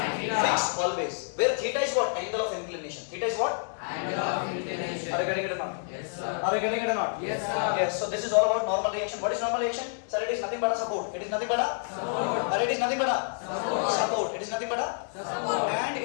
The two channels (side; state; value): right; silent; digital silence